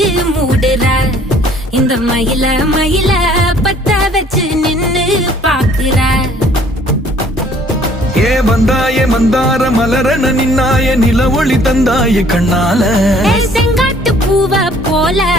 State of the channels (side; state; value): both; normal; correlation 0.58